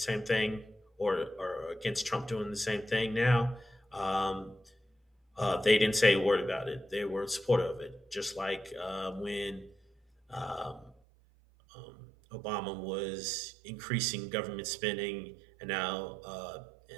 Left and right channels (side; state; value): left; drops out; at 11.0 s